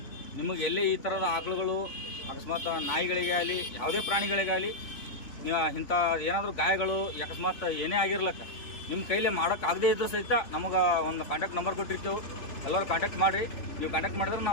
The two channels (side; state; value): right; late; 3.5 ms